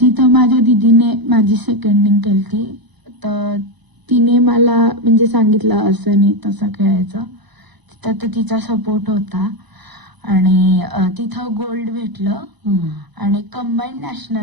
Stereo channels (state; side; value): late; left; 1.0 ms